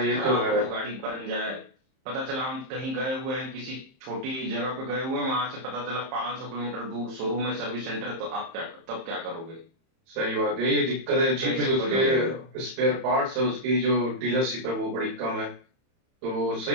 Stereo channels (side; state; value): left; late; 31 ms